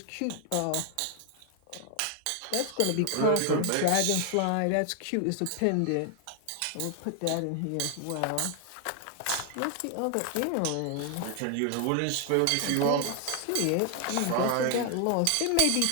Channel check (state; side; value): different; both; correlation 0.00